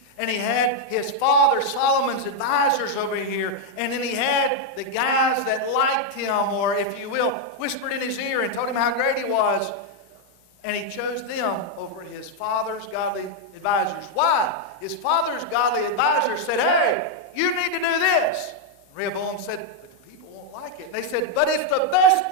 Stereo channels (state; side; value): late; right; 14 ms